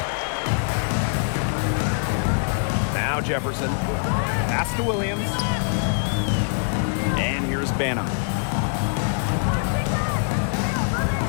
Now Jefferson. Pass to Williams. And here's Banham.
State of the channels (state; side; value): silent; right; 63 dB below the other